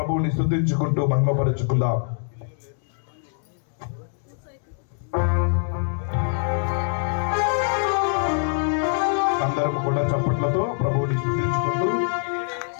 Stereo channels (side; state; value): right; silent; digital silence